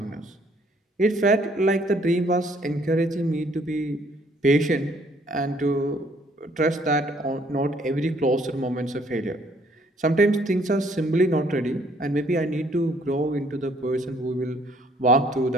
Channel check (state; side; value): normal; both; correlation 0.63